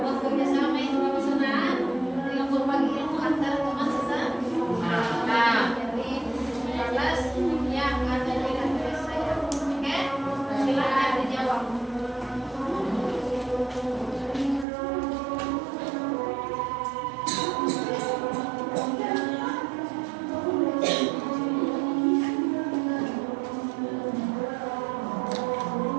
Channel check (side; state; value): left; drops out; at 14.7 s